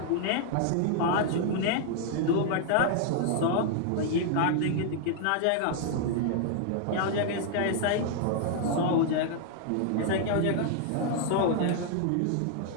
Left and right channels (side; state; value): both; different; correlation 0.00